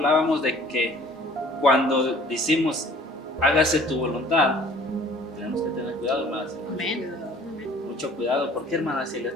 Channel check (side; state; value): both; normal; correlation 0.51